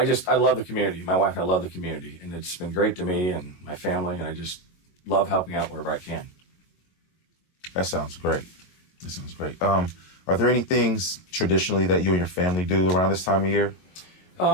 love the community. My wife and I love the community, and it's been great to me and my family, and I just love helping out wherever I can. That sounds great. Are there any things traditionally that you and your family do around this time of year?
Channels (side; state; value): right; late; 22 ms